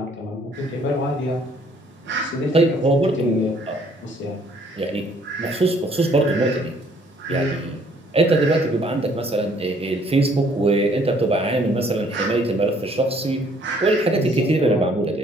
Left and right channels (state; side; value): normal; both; correlation 0.62